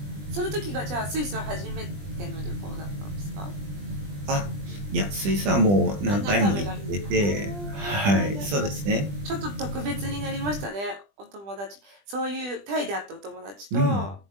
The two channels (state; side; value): late; left; 20 ms